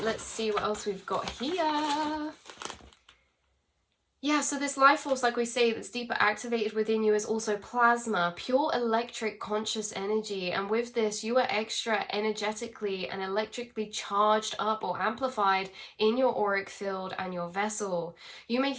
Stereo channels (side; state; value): both; identical; correlation 1.00